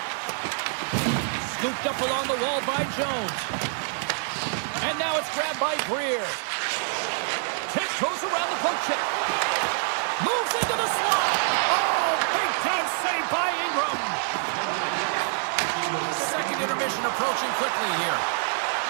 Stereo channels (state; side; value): silent; left; digital silence